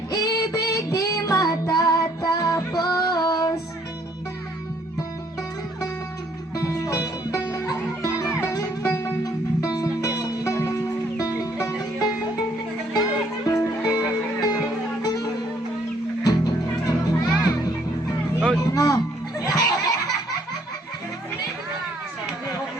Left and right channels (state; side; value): normal; both; correlation 0.65